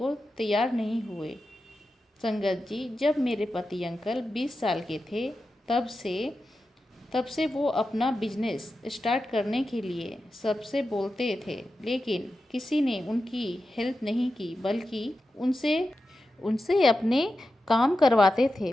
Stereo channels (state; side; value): normal; both; correlation 0.91